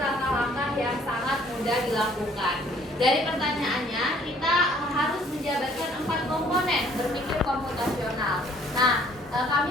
yang sangat mudah dilakukan. Dari pertanyaannya, kita harus menjabarkan 4 komponen berpikir komputasional. Nah,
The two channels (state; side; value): normal; both; correlation 0.59